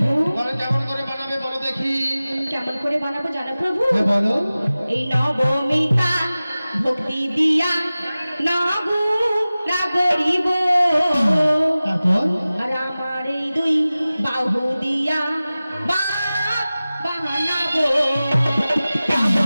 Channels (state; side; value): inverted; both; correlation -0.97